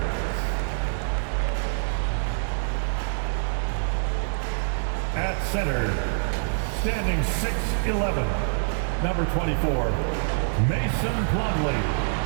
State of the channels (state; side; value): silent; left; 56 dB below the other